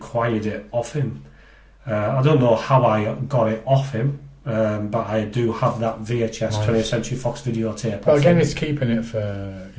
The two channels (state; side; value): identical; both; correlation 1.00